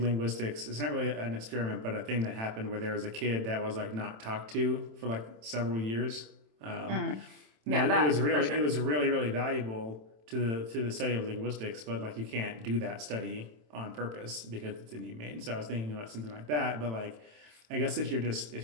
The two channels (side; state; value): left; late; 27 ms